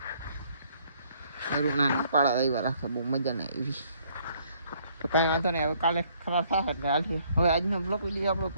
ના પાડા આવ્યા રાખે બહુ મજા નહીં આવી તો કાંઈ વાંધો નહીં, હવે કાલે ખરાબ થાય એટલે હાલશે। હવે આજનો બ્લોક વિડીયો આપણે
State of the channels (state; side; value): inverted; both; correlation -0.64